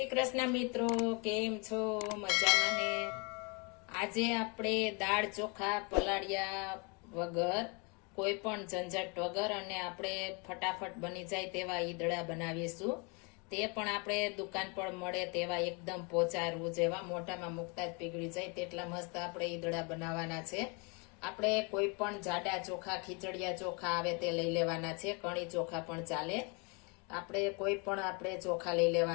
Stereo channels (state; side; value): quieter; right; 32.3 dB